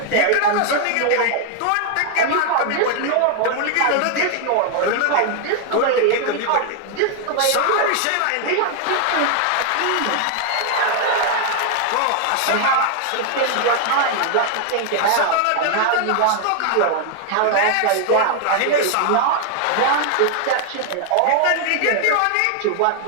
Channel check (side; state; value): both; different; correlation 0.00